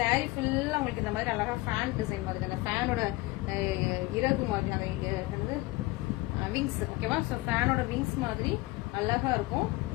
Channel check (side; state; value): right; quieter; 20.7 dB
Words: ஃபுல்லா உங்களுக்கு இந்த மாதிரி அழகா ஃபேன் டிசைன் மாதிரி, அந்த ஃபேனோட இறகு மாதிரி, அந்த விங்ஸ், ஓகேவா? ஸோ ஃபேனோட விங்ஸ் மாதிரி அழகா இருக்கும்.